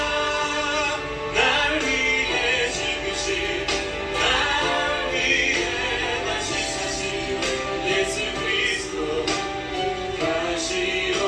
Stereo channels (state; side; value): identical; both; correlation 1.00